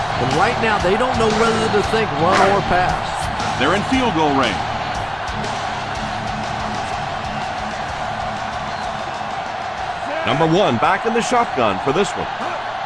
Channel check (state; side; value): identical; both; correlation 1.00